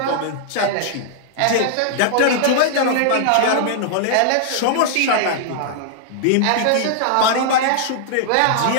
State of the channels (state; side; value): different; both; correlation -0.01